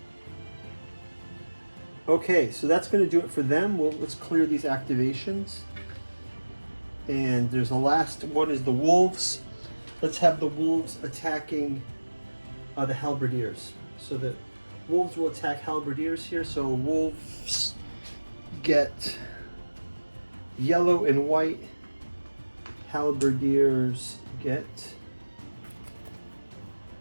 Okay, so that's going to do it for them. Well, let's clear these activations. And there's the last one is the wolves. Let's have the wolves attacking the halberdiers. So the wolves will attack halberdiers here. So wolves get yellow and white. Halberdiers get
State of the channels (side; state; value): both; inverted; correlation -1.00